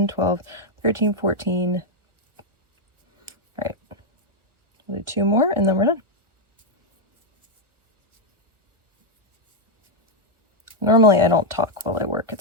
12, 13, 14. All right, we'll do 2 more and then we're done. Normally I don't talk while I work.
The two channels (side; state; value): left; late; 1.4 ms